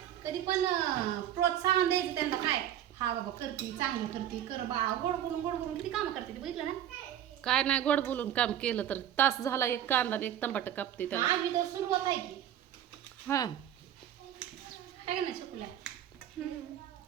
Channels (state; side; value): quieter; left; 11.0 dB